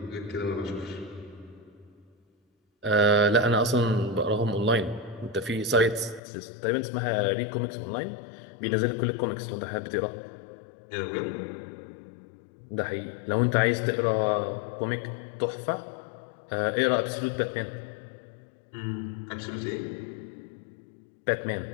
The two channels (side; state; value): right; drops out; at 6.2 s